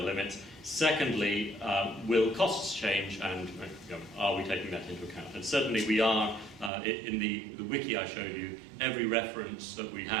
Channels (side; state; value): left; drops out; at 6.7 s